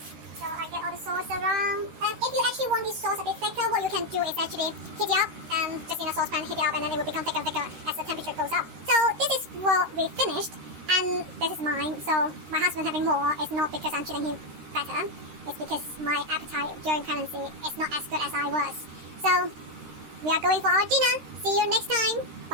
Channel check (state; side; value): late; left; 13 ms